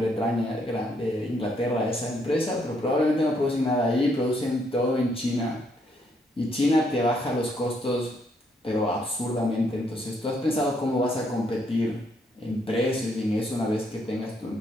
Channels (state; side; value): normal; both; correlation 0.72